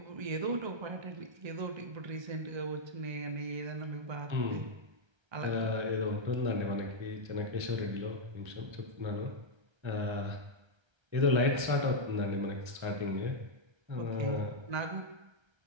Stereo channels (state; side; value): late; left; 1.3 ms